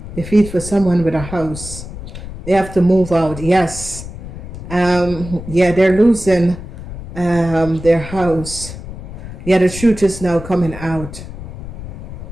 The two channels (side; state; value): left; noise; rumble, 11 dB below the sound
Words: Defeat for someone with a house. They have to move out. Yes. Yeah, they're losing their house. Yeah, the truth is now coming out.